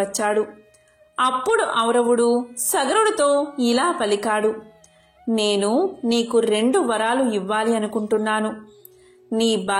అప్పుడు ఔరవుడు సగరుడితో ఇలా పలికాడు, నేను నీకు 2 వరాలు ఇవ్వాలి అనుకుంటున్నాను. నీ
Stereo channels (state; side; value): identical; both; correlation 1.00